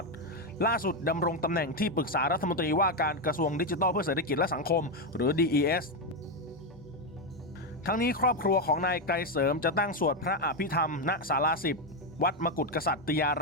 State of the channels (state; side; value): normal; both; correlation 0.06